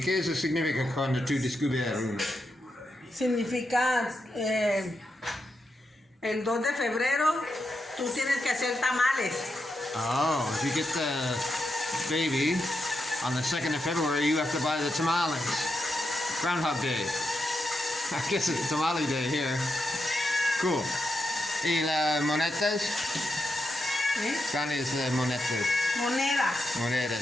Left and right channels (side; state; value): both; normal; correlation 0.85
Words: eso significa cuando tú descubres uno? Significa el 2 de febrero tú tienes que hacer tamales. Oh, if you get the baby on the 2nd of February, you have to buy the tamales. Groundhog Day. I guess it's tamale day here. Cool. ¿Y las monedas? ¿Eh? ¿Cuáles las monedas? Monedas.